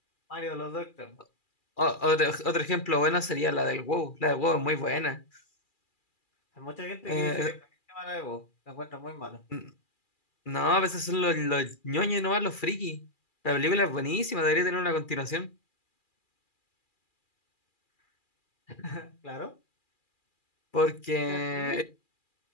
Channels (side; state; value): right; late; 2.4 ms